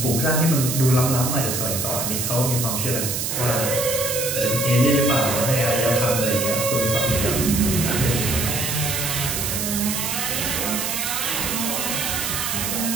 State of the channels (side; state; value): right; noise; hiss, 1 dB below the sound